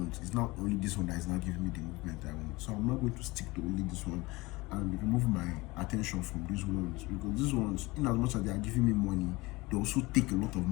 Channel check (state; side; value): quieter; right; 22.3 dB